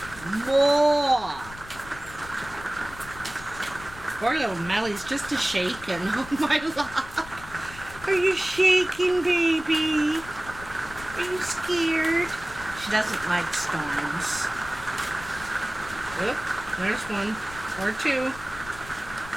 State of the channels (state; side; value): noise; left; rumble, 16 dB below the sound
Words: More. Poor little Melly's just a shaking. Oh my love. Are you shaking, baby? Are you scared? She doesn't like storms. Oop, there's one or two.